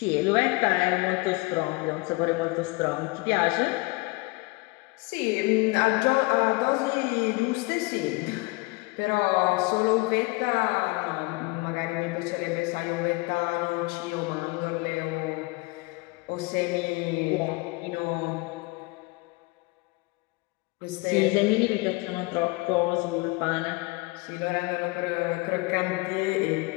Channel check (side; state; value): right; quieter; 24.9 dB